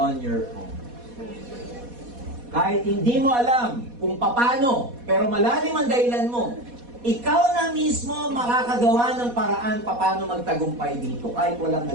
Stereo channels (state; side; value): late; left; 4.1 ms